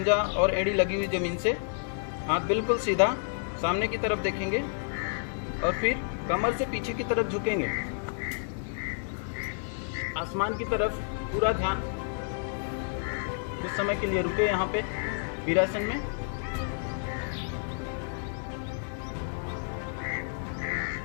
और एड़ी लगी हुई ज़मीन से, हाथ बिल्कुल सीधा सामने की तरफ देखेंगे और फिर कमर से पीछे की तरफ झुकेंगे, आसमान की तरफ पूरा ध्यान। कुछ समय के लिए रुके यहाँ पे वीरासन में।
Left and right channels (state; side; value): silent; right; 58 dB below the other